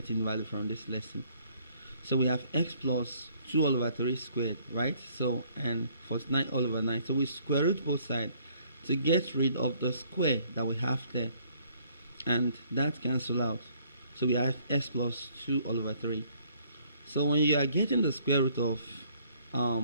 value from this lesson. So we have x plus 2 all over 3 squared, right? So and 49 all over 9. So we square root both sides to get rid of the square that we have there, and that cancel out. So we have x plus 2 all over 3. So when you are getting the square root of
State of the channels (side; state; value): both; inverted; correlation -0.63